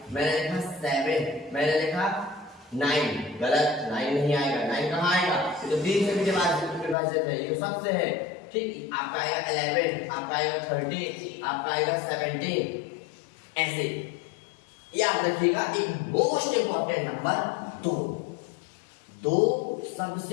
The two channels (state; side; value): drops out; right; at 7.0 s